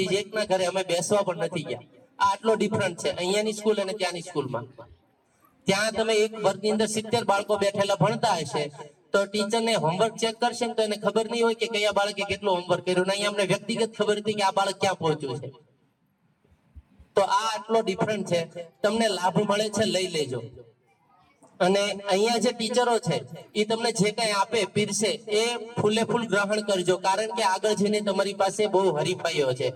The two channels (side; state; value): both; identical; correlation 1.00